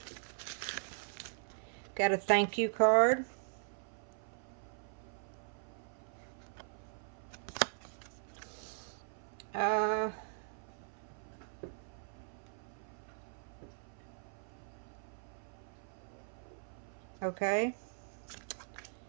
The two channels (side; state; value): left; silent; 51 dB below the other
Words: Got a thank you card. Okay.